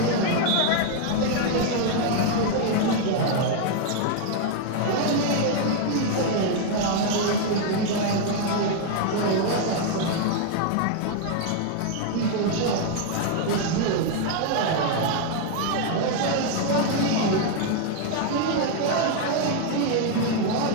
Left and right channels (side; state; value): both; different; correlation 0.00